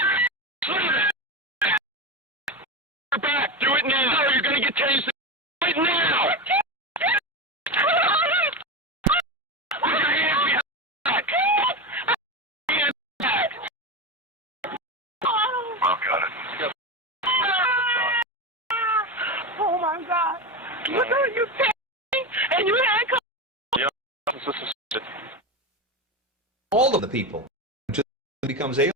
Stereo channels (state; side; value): normal; both; correlation 0.18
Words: Back. Do it now. You're going to get tased right now. Put your hands behind back. Hands back. Oh, got it. Oh my God! Look at you take and you handcuff. Yeah, all of the people until it becomes alien